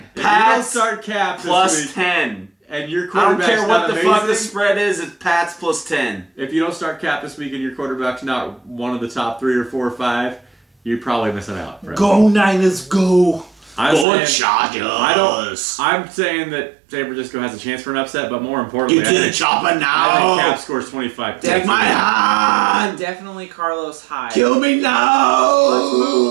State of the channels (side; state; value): left; drops out; at 14.1 s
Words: If you don't start Cap plus this week, 10. And your I quarterback's don't care what the fuck the spread is, it's Pats plus 10. If you don't start Cap this week and your quarterback's not one of the top 3 or 4 or 5, you're probably missing out. Go Niners, go. Chargers. I'm saying that San Francisco has a chance for an upset, but more importantly, Get to the chopper I think now. Cap scores 25 points. Take my hand. Definitely Carlos Hyde. Kill me now.